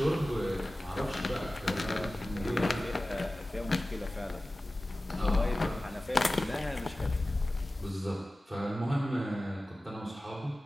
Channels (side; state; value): both; normal; correlation 0.96